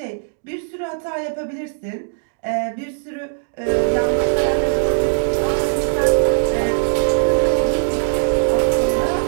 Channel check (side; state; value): left; silent; digital silence